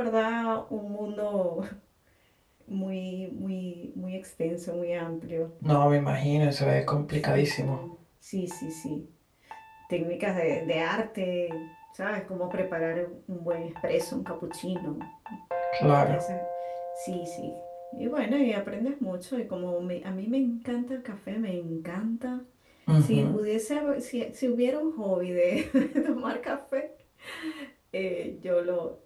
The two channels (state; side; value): identical; both; correlation 1.00